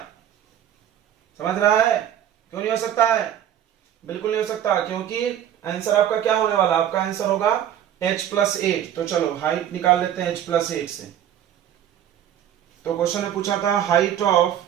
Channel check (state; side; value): quieter; left; 10.5 dB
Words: समझ रहा है? क्यों नहीं हो सकता है? बिल्कुल नहीं हो सकता, क्योंकि आंसर आपका क्या होने वाला, आपका आंसर होगा h+8। तो चलो हाइट निकाल लेते हैं h+8 से। तो क्वेश्चन ने पूछा था height of